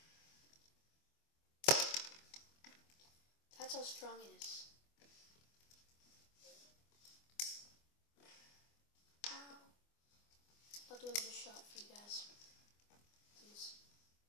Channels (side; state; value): right; late; 24 ms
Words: that's how strong it is. Ow. I'll do another shot for you guys, please.